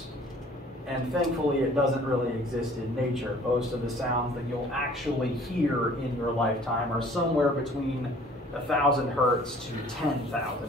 And thankfully it doesn't really exist in nature. Most of the sounds that you'll actually hear in your lifetime are somewhere between 1,000 hertz to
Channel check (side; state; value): both; normal; correlation 0.52